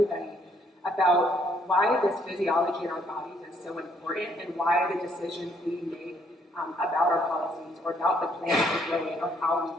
about why this physiology in our bodies is so important and why the decisions we make about our policies or about the plans we're growing or how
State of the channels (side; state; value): both; normal; correlation 0.68